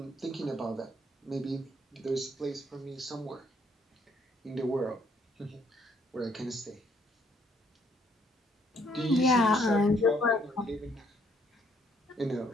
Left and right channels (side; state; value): both; normal; correlation 0.67